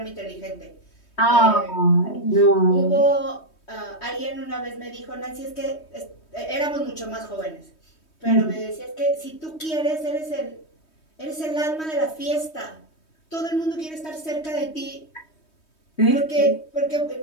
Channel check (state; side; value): late; right; 3.2 ms